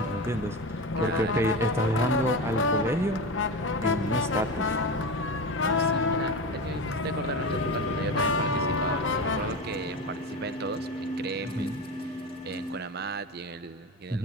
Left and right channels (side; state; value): both; normal; correlation 0.24